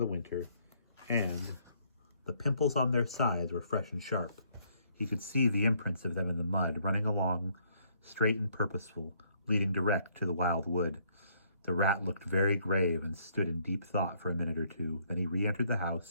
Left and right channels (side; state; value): both; inverted; correlation -0.67